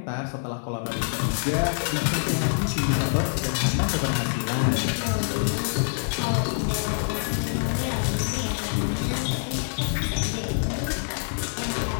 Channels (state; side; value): silent; right; 57 dB below the other